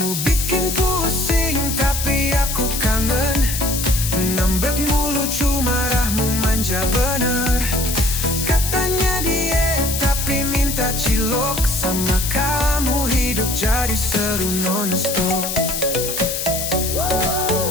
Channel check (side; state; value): left; noise; hiss, 3 dB below the sound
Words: bikin pusing tapi aku kangen. Ngambek mulu cuma marahmu manja bener. Katanya diet tapi minta cilok. Sama kamu hidup jadi seru non-stop.